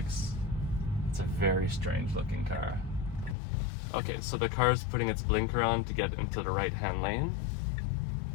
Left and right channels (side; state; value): right; drops out; at 3.4 s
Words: It's a very strange looking car. Okay, so the car is putting its blinker on to get into the right-hand lane.